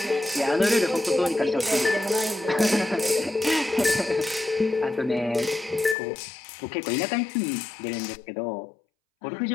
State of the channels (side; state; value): right; drops out; at 6.0 s